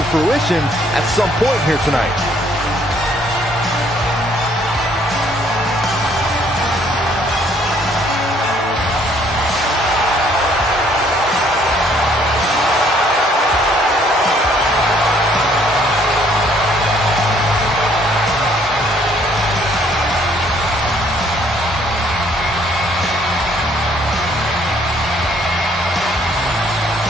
fruition at some point here tonight.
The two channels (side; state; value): both; normal; correlation 0.63